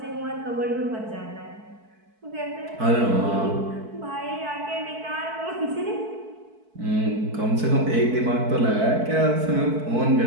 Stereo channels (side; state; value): left; late; 4.6 ms